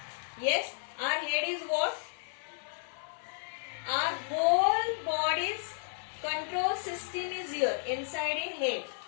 Yes, our head is what? Our whole body's control system is here, inside in head.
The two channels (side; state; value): right; silent; 56 dB below the other